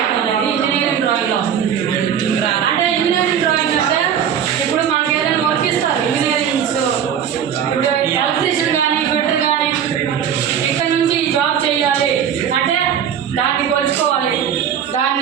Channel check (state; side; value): quieter; left; 8.6 dB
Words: అనేది ఇంజనీరింగ్ డ్రాయింగ్లో వస్తుంది. అంటే ఇంజనీరింగ్ డ్రాయింగ్ అంటే ఇప్పుడు మనకి ఏదైనా వర్క్ ఇస్తారు ఇంజనీరింగ్స్, ఇప్పుడు ఎలక్ట్రీషియన్ కానీ ఫిటర్ కానీ ఇక్కడ నుంచి ఈ జాబ్ చేయాలి అంటే దాన్ని కొలుచుకోవాలి,